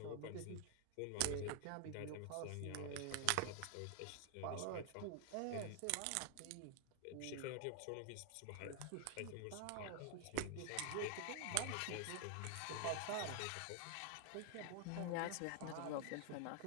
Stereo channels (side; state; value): both; different; correlation 0.00